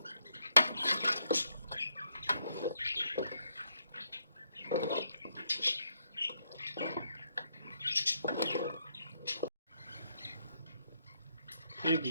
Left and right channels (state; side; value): inverted; both; correlation -0.76